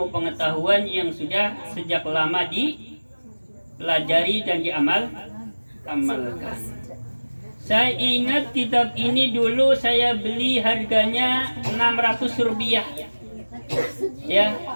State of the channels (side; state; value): both; inverted; correlation -1.00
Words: pengetahuan yang sudah sejak lama dipelajari dan diamalkan. Saya ingat kitab ini dulu saya beli harganya 600 rupiah. Ya,